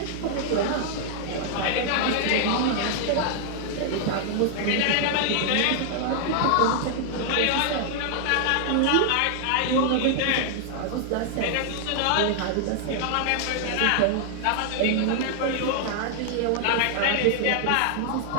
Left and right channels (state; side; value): different; both; correlation 0.00